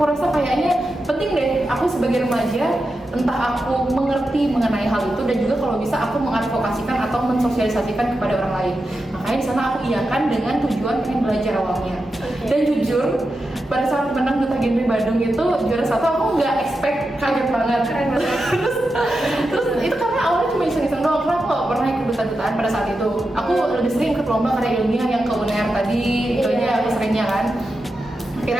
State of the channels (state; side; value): normal; both; correlation 0.89